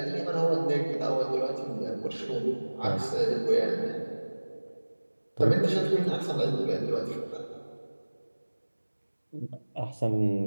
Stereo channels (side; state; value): both; inverted; correlation -1.00